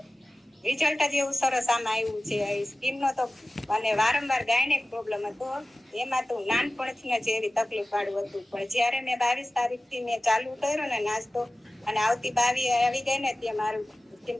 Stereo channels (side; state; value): both; normal; correlation 0.97